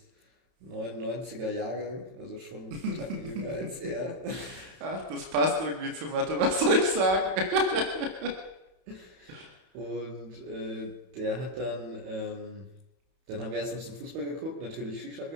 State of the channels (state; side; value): late; left; 32 ms